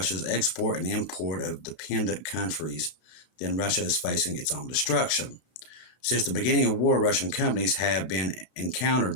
export and import of dependent countries, then Russia is facing its own destruction. Since the beginning of war, Russian companies have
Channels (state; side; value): late; right; 33 ms